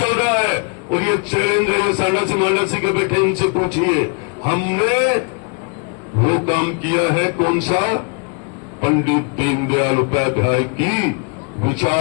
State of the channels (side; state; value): right; quieter; 36.3 dB